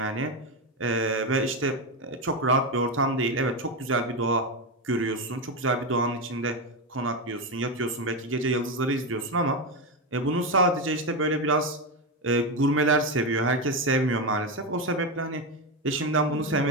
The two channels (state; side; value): normal; both; correlation 0.12